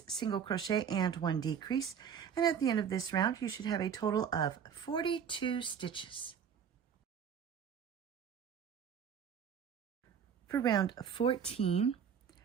single crochet and 1 decrease. And at the end of this round, you should have a total of 42 stitches. For round 14,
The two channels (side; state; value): left; quieter; 7.7 dB